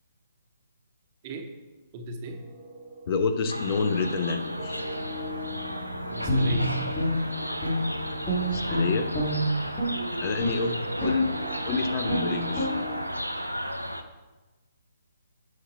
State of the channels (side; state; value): both; inverted; correlation -0.72